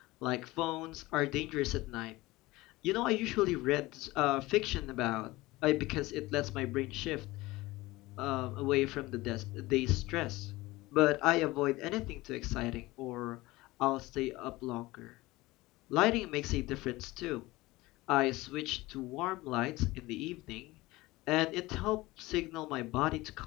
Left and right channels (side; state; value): right; quieter; 19.9 dB